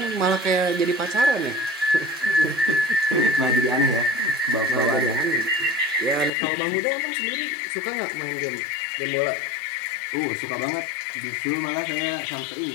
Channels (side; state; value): right; drops out; at 6.3 s